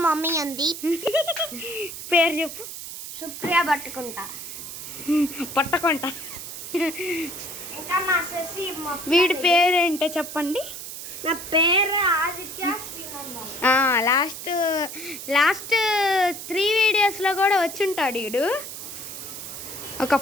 mummy ఉంది. పేరు చెప్పు. సుప్రియ పట్టుకుంటా. ఇంకా మా శశి. వీడి పేరేంటో చెప్పండి. నా పేరు ఆదిత్య శ్రీనందన్. లాస్ట్ 3 వీడియోస్లో కూడా వచ్చుంటాడు వీడు. ఒక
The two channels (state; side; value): noise; right; hiss, 9 dB below the sound